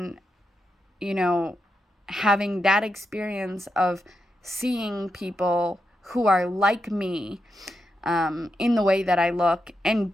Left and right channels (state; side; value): normal; both; correlation 0.86